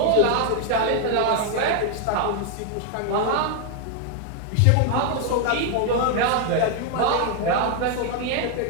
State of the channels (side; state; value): both; different; correlation 0.00